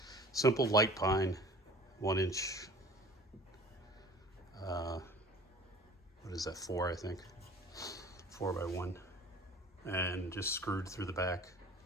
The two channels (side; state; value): both; normal; correlation 0.45